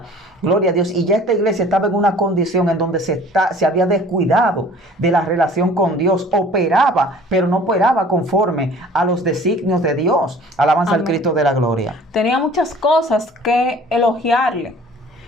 gloria a Dios, y ya esta iglesia estaba en una condición en donde se había descuidado de la relación con Dios, operaba, pero no operaba conforme a los designios de Dios. Alabanza al Cristo de la gloria. Tenía muchas cosas que elogiarle,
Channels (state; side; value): normal; both; correlation 0.49